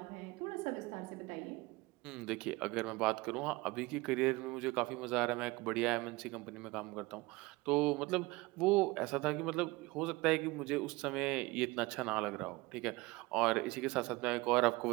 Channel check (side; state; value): left; quieter; 22.4 dB